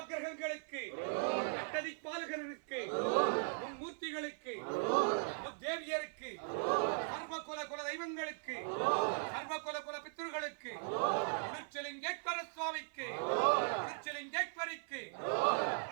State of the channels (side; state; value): left; silent; 52 dB below the other